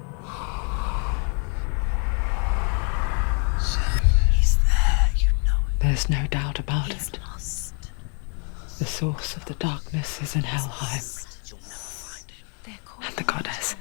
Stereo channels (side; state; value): right; quieter; 39.8 dB